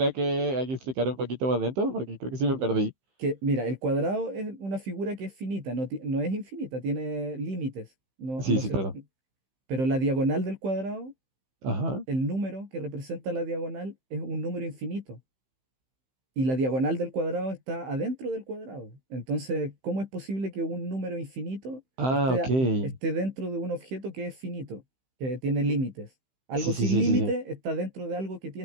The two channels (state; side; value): late; left; 15 ms